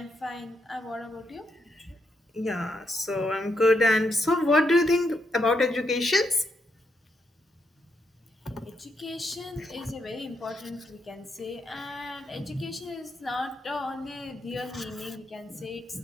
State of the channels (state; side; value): normal; both; correlation 0.79